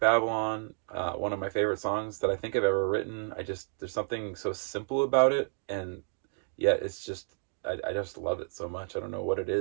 One of my favorite songs that I think I've ever written. There's something so simple about it, and yet it's just, I just love it so much. I don't know what it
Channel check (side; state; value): left; silent; digital silence